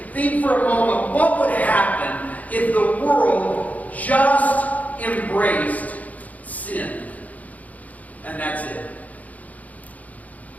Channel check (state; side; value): late; right; 0.075 ms